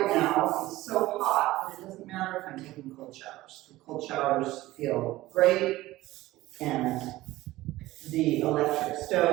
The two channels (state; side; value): quieter; left; 17.2 dB